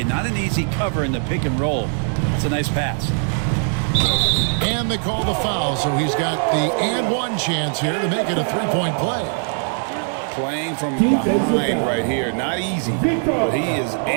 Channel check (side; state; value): left; silent; 56 dB below the other